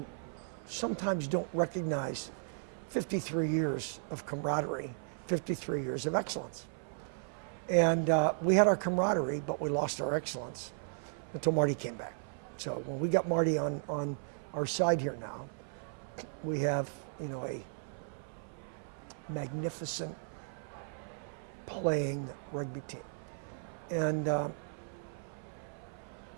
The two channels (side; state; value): left; silent; 54 dB below the other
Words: sometimes don't recognize 53 years of camaraderie, 53 years of excellence. And we had our camaraderie, but we lost our excellence until Marty came back. So when we got Marty on our side here now, we have, you know, a magnificent playing rugby team. And